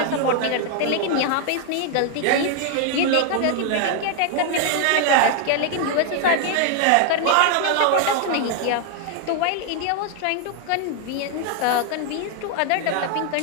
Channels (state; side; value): different; both; correlation 0.00